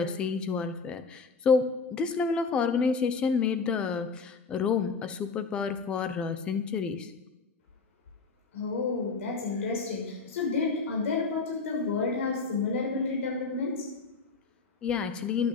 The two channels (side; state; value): right; quieter; 4.6 dB